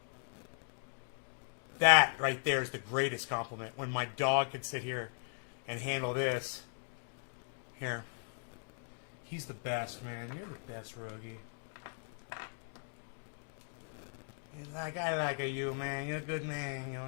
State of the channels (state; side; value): silent; right; 52 dB below the other